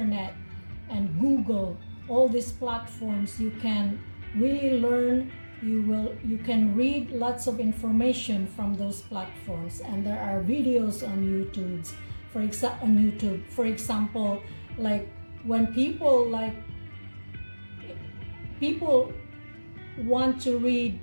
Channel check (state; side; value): inverted; both; correlation -1.00